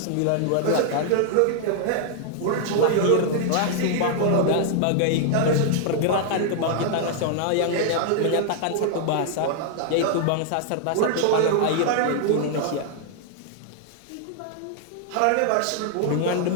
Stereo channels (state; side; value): different; both; correlation 0.00